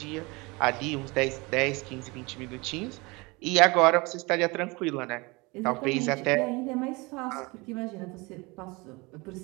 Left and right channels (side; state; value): left; quieter; 25.4 dB